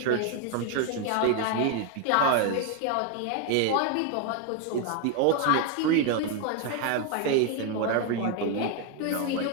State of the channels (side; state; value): both; different; correlation 0.01